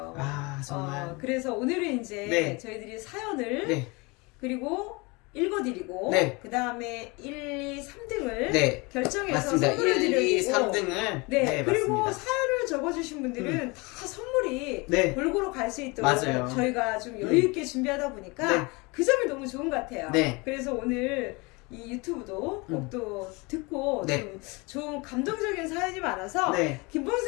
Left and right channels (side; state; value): right; quieter; 26.8 dB